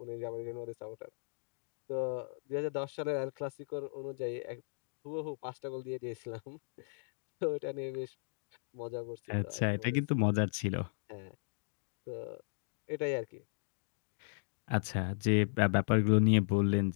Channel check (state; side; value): silent; right; digital silence